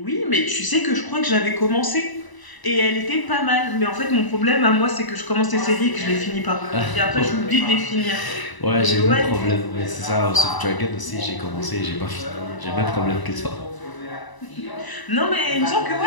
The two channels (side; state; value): right; late; 1.0 ms